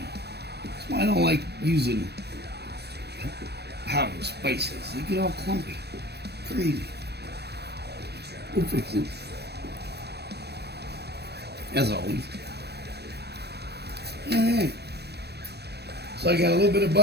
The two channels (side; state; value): left; late; 0.47 ms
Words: why I don't like using powdered spices. They get all clumpy. Crazy. We'll fix it. As always. Alright. So I got a little bit of